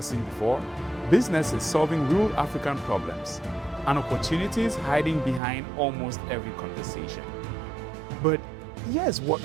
before, businesses solving real African problems, and opportunities hiding behind almost every conversation. But here's what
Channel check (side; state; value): left; drops out; at 5.4 s